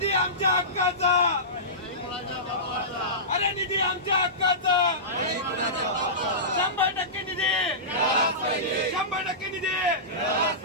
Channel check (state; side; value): normal; both; correlation -0.20